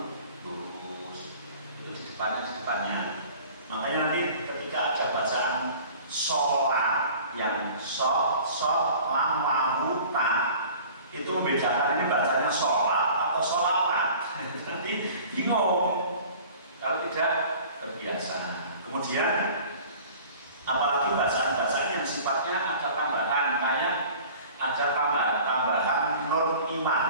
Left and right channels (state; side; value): inverted; both; correlation -0.45